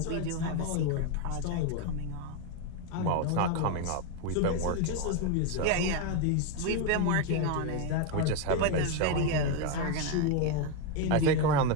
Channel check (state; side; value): different; both; correlation 0.02